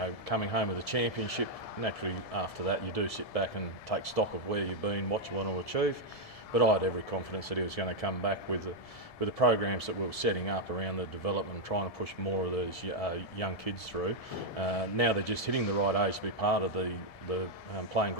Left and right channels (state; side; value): late; right; 1.7 ms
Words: coming home with a championship. Naturally, after that, you do sit back and take stock of where you've been, what you want to achieve. But I had every confidence that he was going to come back with the programs that we were setting up around the development and trying to push more of these young kids through. Now they're just hitting the right age to be part of the playing